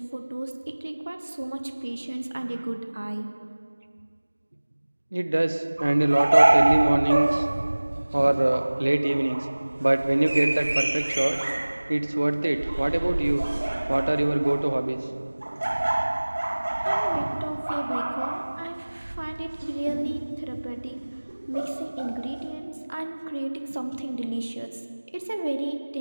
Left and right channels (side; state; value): both; inverted; correlation -1.00